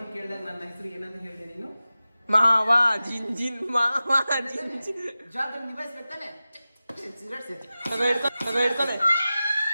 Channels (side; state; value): both; inverted; correlation -0.95